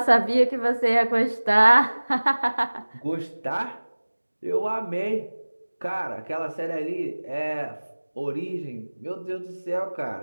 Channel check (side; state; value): both; inverted; correlation -1.00